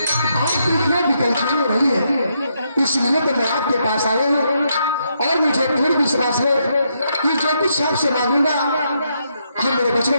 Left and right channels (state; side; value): inverted; both; correlation -0.78